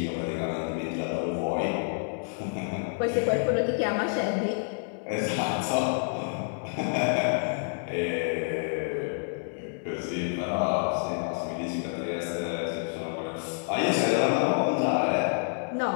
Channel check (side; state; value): right; silent; digital silence